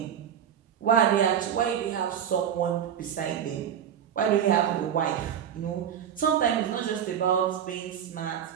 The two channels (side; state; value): left; quieter; 9.0 dB